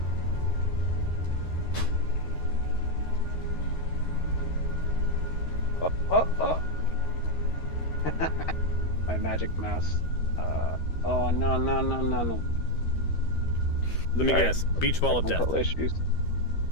Oh. My magic mouse. Oh, no. Let me guess. Beach ball of death. Technical issues.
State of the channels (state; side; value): late; right; 13 ms